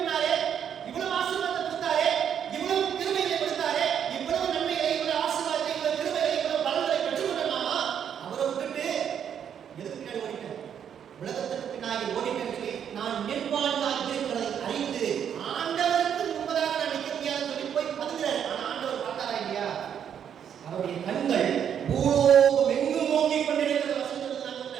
இவ்வளவு ஆசீர்வாதத்தை கொடுத்தாரே, இவ்வளவு கிருபைகளை கொடுத்தாரே, இவ்வளவு நன்மைகளை, இவ்வளவு ஆசீர்வாதத்தை, இவ்வளவு கிருபைகளை, இவ்வளவு பலன்களை பெற்றுக்கொள்ளலாமா? அவரை விட்டுட்டு எதுக்கு பின்னாடி ஓடிட்டேன்? உலகத்துக்கு பின்னாடி ஓடிட்டேன்னு சொல்லி நான் நிர்வாணியாக இருக்கிறதை அறிந்து ஆண்டவருக்கு முன்பதாக நான் நிற்க முடியாதுன்னு சொல்லி போய் பதுங்குறாரு. ஆனா ஆண்டவர் பார்த்தாரா இல்லையா? அவருடைய கண்கள் பூலோகம் எங்கும் நோக்கி கொண்டிருக்கிறது. வசனத்தில் நான்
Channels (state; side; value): quieter; left; 8.6 dB